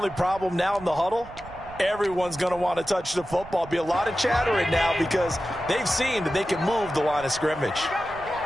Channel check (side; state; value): right; noise; rumble, 17 dB below the sound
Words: problem now in the huddle, everyone's going to want to touch the football. Be a lot of chattering now because they've seen that they can move the line of scrimmage.